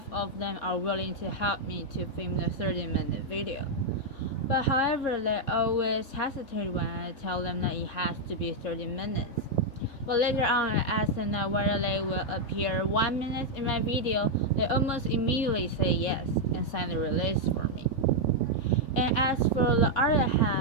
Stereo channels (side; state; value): right; late; 3.6 ms